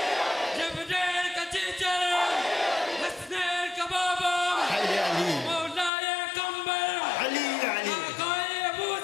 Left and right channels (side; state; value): right; drops out; at 5.9 s